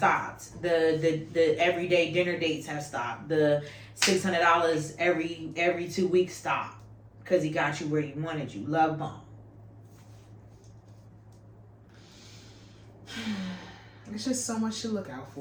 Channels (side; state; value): both; identical; correlation 1.00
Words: The everyday dinner dates have stopped. The $600 every 2 weeks stopped because he got you where he wanted you. Love bomb. It's just so much to look out